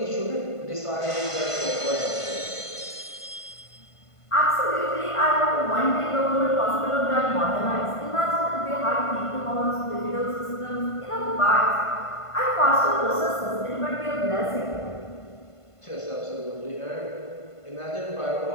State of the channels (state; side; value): late; right; 1.5 ms